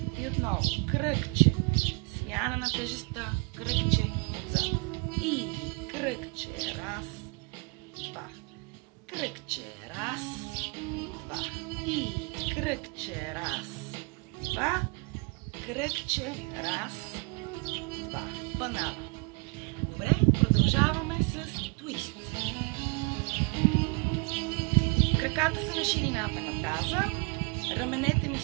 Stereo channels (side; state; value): left; quieter; 29.8 dB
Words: И отново кръгче, смяна на тежестта, кръгче отзад. И кръгче, раз, два. Кръгче, раз, два. И кръгче, раз, два. Кръгче, раз, два. Банана. Добре, продължаваме с твист. Краката са на ширината на таза, раменете ми